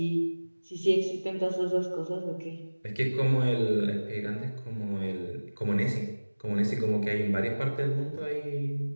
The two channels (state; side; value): inverted; both; correlation -1.00